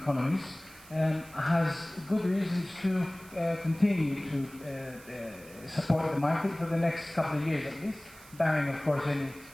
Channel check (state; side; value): noise; right; hiss, 21 dB below the sound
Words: has good reasons to continue to support the market for the next couple of years at least, barring of course any